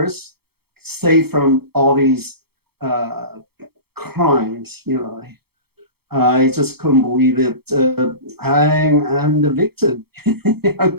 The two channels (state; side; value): late; left; 0.96 ms